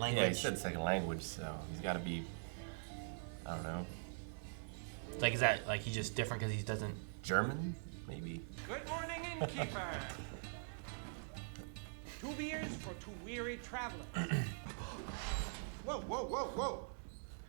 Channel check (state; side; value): silent; left; digital silence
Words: language. Yeah, he said second language, so he's got to be, I don't know. Like, is that like he's just different because he doesn't... German, maybe? Innkeeper! 2 beers for 2 weary travelers. Whoa, whoa, whoa, whoa.